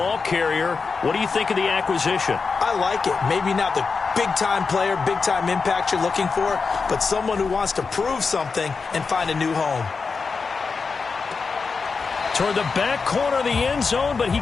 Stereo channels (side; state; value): right; quieter; 4.8 dB